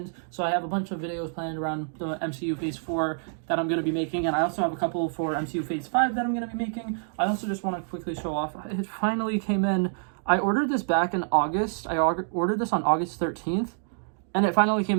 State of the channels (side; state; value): left; silent; 60 dB below the other